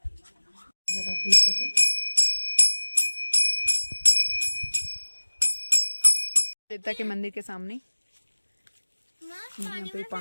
देवता के मंदिर के सामने यहाँ पे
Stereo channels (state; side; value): inverted; both; correlation -1.00